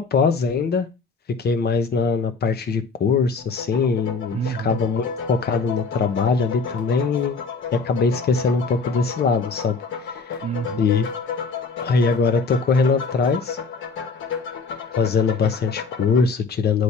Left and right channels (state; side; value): quieter; right; 4.6 dB